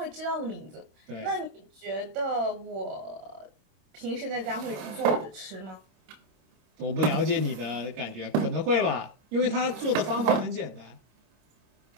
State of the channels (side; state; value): left; late; 25 ms